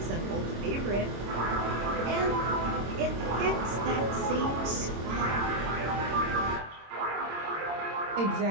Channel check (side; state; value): left; late; 26 ms